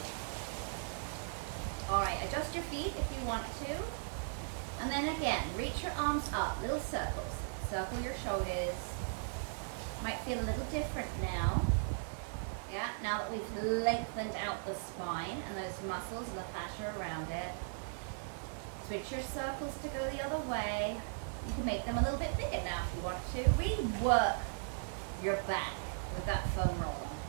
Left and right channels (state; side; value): silent; left; digital silence